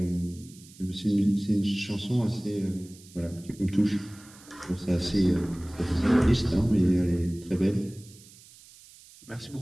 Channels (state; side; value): noise; right; hiss, 22 dB below the sound